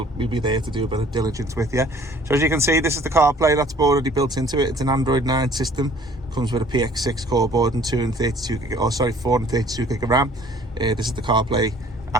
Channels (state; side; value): normal; both; correlation 0.54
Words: be there to do a bit of diligence with you. So as you can see, this is the CarPlay that's already built into it. It's an Android 9 system. Comes with a PX6 core board and 432 gig of RAM. This is the CarPlay